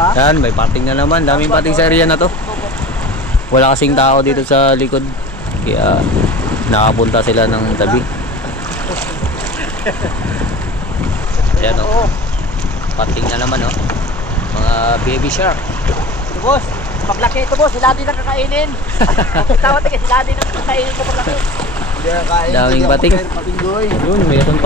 Yan, may pating na naman. Daming pating sa area na to. Wala kasing tao dito sa likod. Kaya nakapunta sila ng tabi. Ayan o. Pating na naman o. Mga baby shark. Ito boss, paglaki ito boss, sila din ang kakainin. Tawad ka, sila din ang kakainin ko paglaki. Daming pating. Yun, mayroon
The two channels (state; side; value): normal; both; correlation 0.39